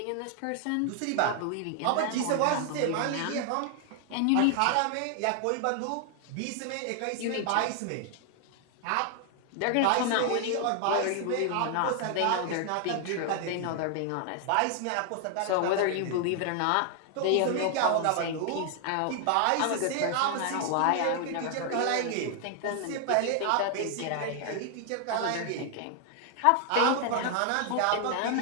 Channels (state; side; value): different; both; correlation 0.00